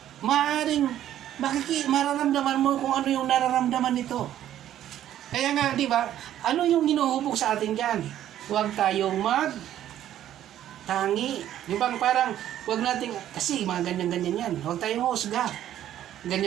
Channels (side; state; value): left; quieter; 11.8 dB